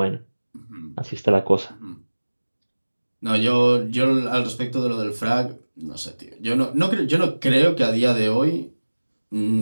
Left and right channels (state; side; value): inverted; both; correlation -1.00